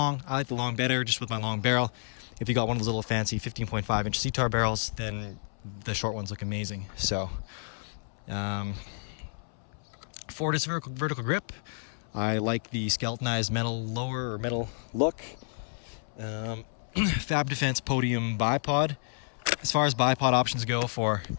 I like the long better, just with my long barrel. If you got one of those little fancy 15.5 inch CTAR barrels, then the short ones look amazing. So, Fortis vertical grip. I like the skeletonized metal lower or metal look. Fab Defense Podium Bipod. As far as bipod options go for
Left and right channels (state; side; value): silent; right; 58 dB below the other